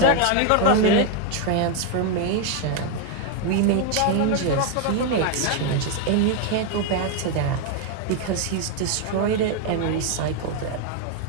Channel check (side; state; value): both; different; correlation 0.01